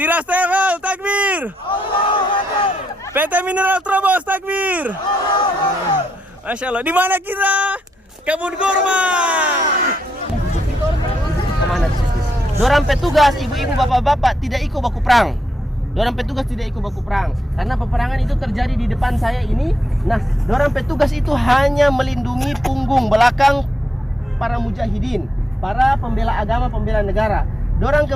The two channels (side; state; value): both; normal; correlation 0.80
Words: Tevel, takbir! PT Mineral Trobos, takbir! Masya Allah, di mana kita? Kebun kurma! Dorang petugas, ibu-ibu, bapak-bapak tidak ikut baku perang. Dorang petugas tidak ikut baku perang karena peperangan itu terjadi di depan saya ini. Nah, dorang petugas itu hanya melindungi punggung belakang para mujahidin, para pembela agama, pembela negara. Dorang